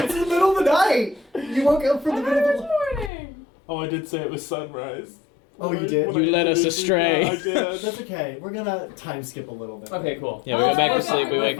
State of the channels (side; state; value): right; drops out; at 3.1 s